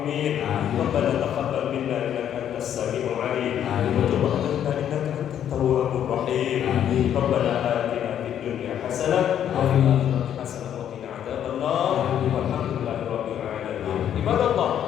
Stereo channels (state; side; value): quieter; right; 9.9 dB